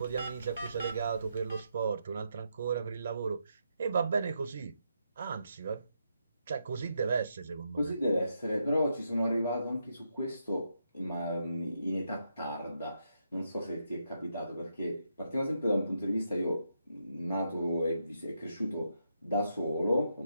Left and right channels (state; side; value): inverted; both; correlation -0.81